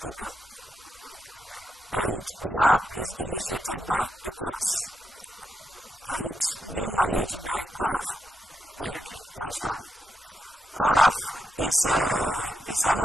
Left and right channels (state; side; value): normal; both; correlation 0.84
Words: Okay. And Waapp is initiated by ECOWAS and being managed by CORAF. Wait a minute, what is CORAF? CORAF is an